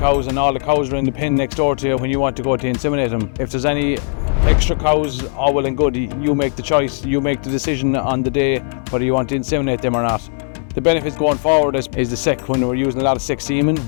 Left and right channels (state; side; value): silent; right; 64 dB below the other